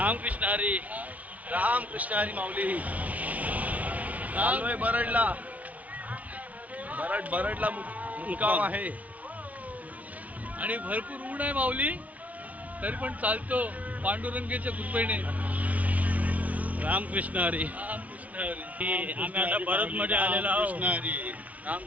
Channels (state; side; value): late; left; 0.070 ms